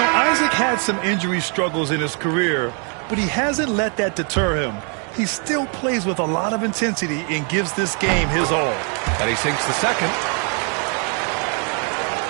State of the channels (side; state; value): left; quieter; 39.0 dB